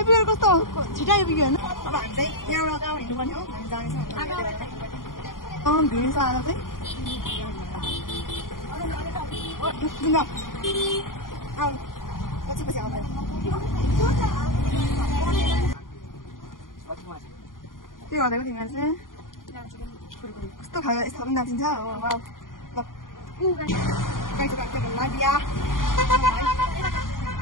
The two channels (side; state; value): right; late; 0.90 ms